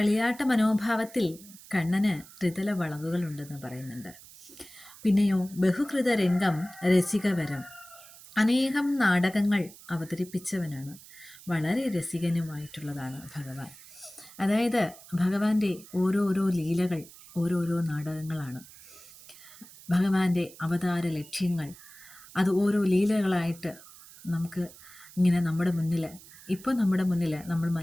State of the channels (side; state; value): right; noise; hiss, 20 dB below the sound